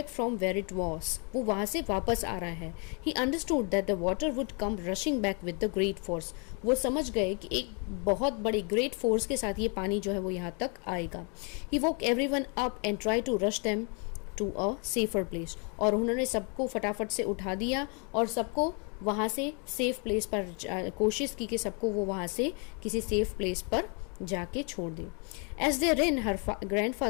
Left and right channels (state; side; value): quieter; right; 35.5 dB